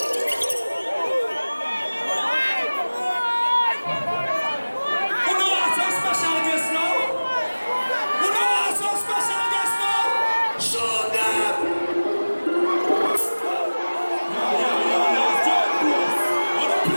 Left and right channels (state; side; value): inverted; both; correlation -1.00